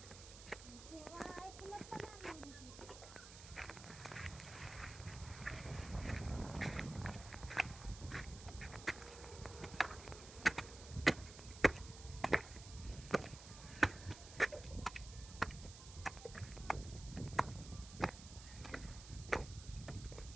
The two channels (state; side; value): noise; right; hiss, 14 dB below the sound